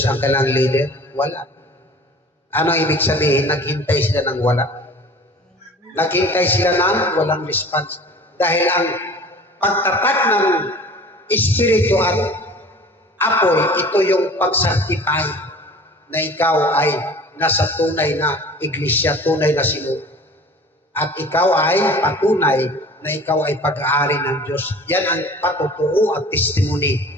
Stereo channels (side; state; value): both; normal; correlation 0.44